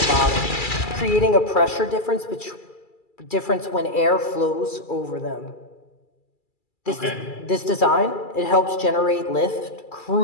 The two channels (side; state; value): right; late; 2.3 ms